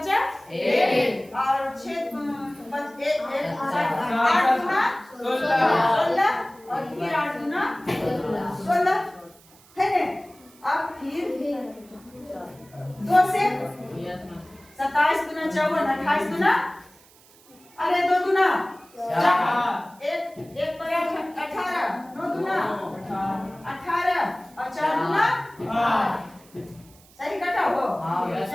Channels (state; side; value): noise; right; hiss, 26 dB below the sound